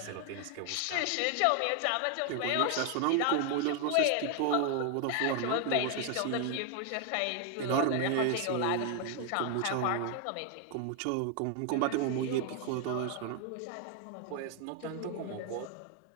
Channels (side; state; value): both; different; correlation 0.00